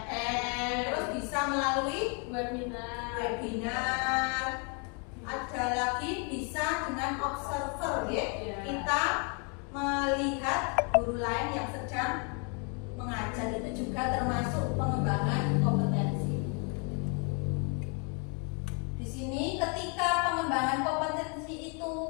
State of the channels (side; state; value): right; quieter; 36.7 dB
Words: terus bisa melalui webinar. Ada lagi bisa dengan observer ya. Kita melihat guru lain yang sedang mengajar, itu juga termasuk pengembangan kompetensi. Di sini ketika pengembangan kompetensi itu